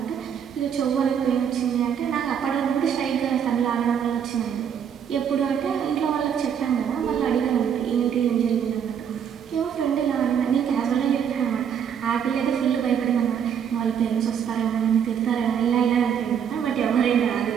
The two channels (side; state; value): left; quieter; 8.1 dB